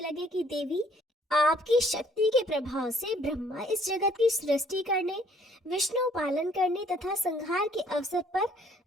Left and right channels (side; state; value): both; normal; correlation 0.61